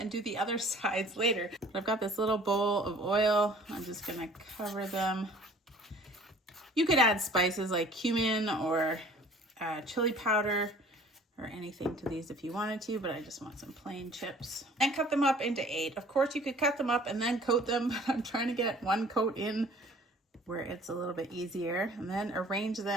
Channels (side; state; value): both; normal; correlation 0.51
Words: do the other sides later. I've got this little bowl of oil. I'm just gonna cover them. You could add spices like cumin or chili powder or anything to these if you wanted to, but I just want some plain chips. And cut them up into 8. Of course, you could cut them up and then coat them, but I'm trying to get one coat in where it's a little bit easier. And then arrange